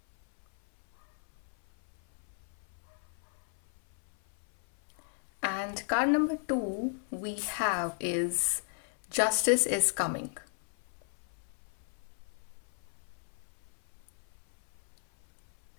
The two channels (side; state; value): right; silent; 55 dB below the other